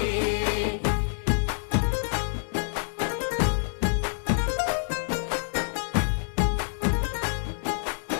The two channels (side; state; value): right; silent; digital silence